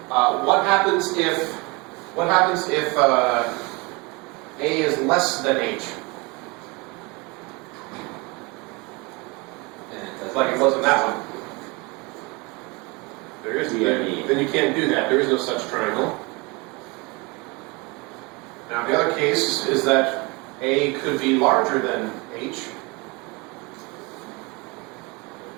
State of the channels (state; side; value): quieter; left; 27.0 dB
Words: What happens if A is less than H? And it does Like it was in that one. There is Yeah. then you can't do that. There is no such triangle. Now the other case is that A could be larger than H.